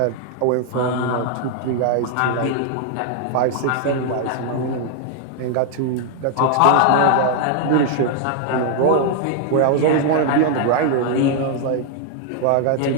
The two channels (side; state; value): both; different; correlation 0.00